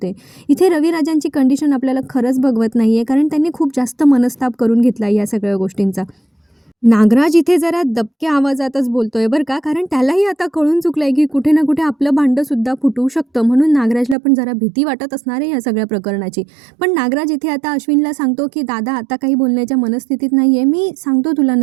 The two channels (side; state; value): left; drops out; at 14.2 s